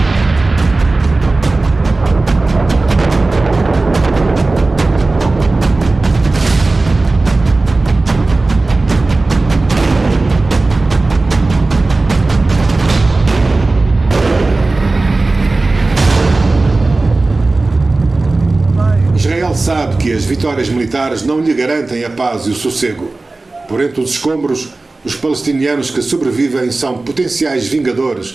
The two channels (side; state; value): left; quieter; 3.3 dB